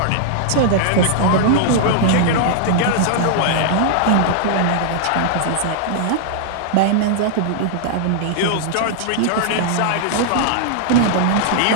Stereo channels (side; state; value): both; different; correlation -0.01